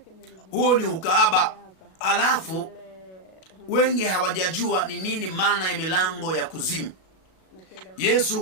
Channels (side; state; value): right; late; 37 ms